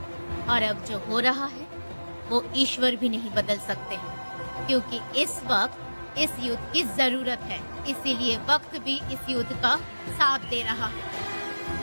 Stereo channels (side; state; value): both; inverted; correlation -1.00